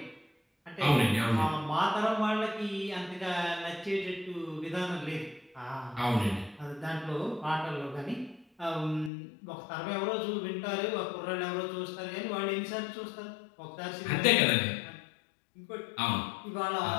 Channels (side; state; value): right; drops out; at 9.1 s